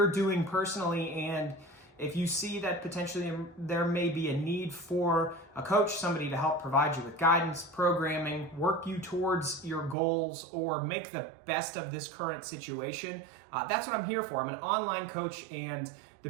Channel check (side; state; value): left; drops out; at 10.0 s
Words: doing personally, and if you see that potentially there may be a need for a coach, somebody to help provide you with guidance, programming, work you towards your goals, or make the best of this current situation. That's what I'm here for. I'm an online coach, and the